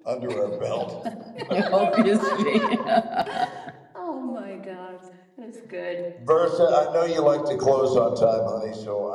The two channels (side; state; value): both; identical; correlation 1.00